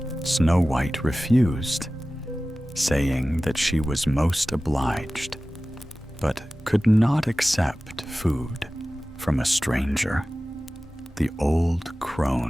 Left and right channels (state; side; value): normal; both; correlation 0.96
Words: Snow White refused, saying that she was most obliged, but could not accept food from a stranger. The old